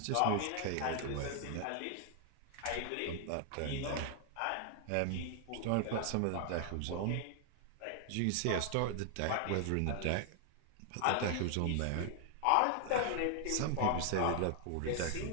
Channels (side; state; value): both; different; correlation 0.00